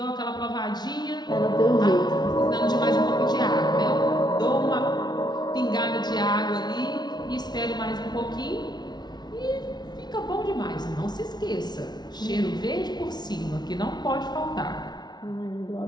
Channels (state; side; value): late; right; 0.20 ms